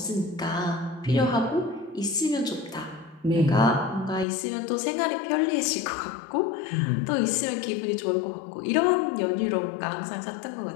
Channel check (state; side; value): drops out; right; at 4.2 s